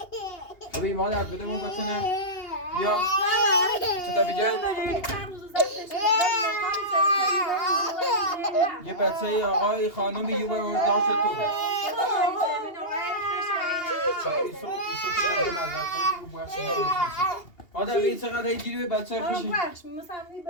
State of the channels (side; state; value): right; late; 2.8 ms